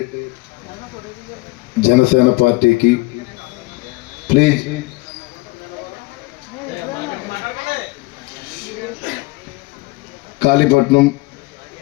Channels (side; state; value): right; quieter; 22.9 dB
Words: జనసేన పార్టీకి ప్లీజ్ కాళీపట్నం